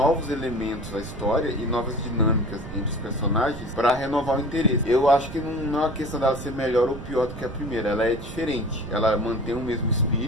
elementos à história e novas dinâmicas entre os personagens para renovar o interesse. Eu acho que não é uma questão dela ser melhor ou pior do que a primeira, ela é diferente. Ela mantém o mesmo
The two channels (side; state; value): right; noise; rumble, 12 dB below the sound